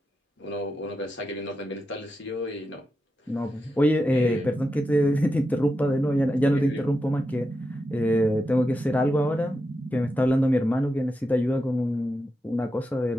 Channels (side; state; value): both; normal; correlation 0.88